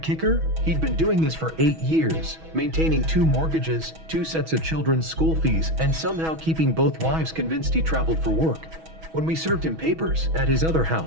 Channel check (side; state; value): left; late; 6.2 ms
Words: He'd been doing this for 8 years, maintaining 2 mortgages, 2 sets of children's school fees, and somehow keeping both wives convinced he traveled for work. When we served him papers at his other